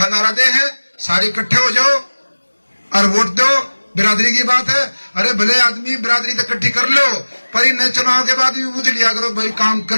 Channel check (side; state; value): both; inverted; correlation -1.00